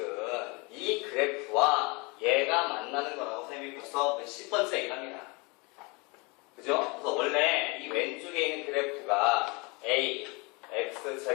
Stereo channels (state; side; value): quieter; right; 28.4 dB